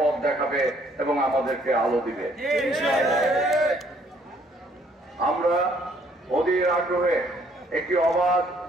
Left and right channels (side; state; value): both; normal; correlation 0.64